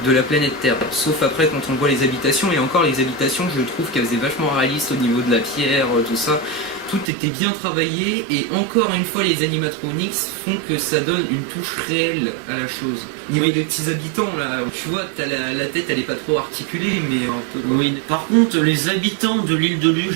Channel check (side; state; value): left; drops out; at 7.1 s